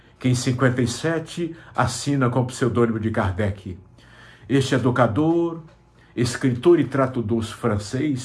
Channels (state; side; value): identical; both; correlation 1.00